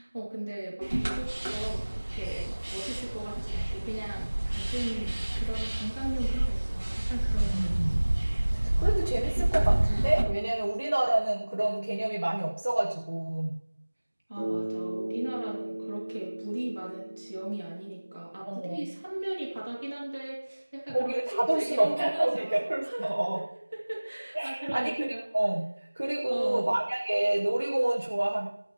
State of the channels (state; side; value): inverted; both; correlation -1.00